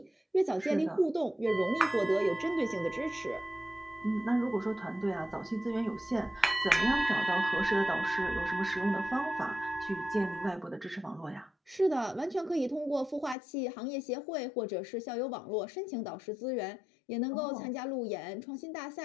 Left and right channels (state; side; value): drops out; right; at 13.4 s